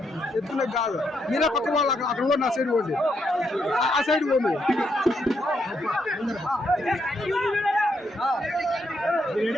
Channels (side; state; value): both; normal; correlation 0.78